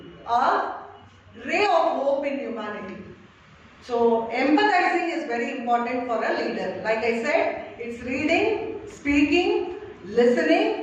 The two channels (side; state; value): both; identical; correlation 1.00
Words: a ray of hope in humanity. So empathizing is very important for a leader. Like I said, it's reading, speaking,